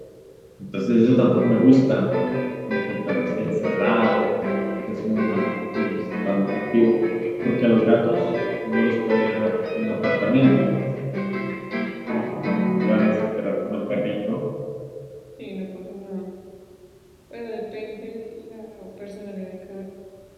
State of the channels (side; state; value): both; identical; correlation 1.00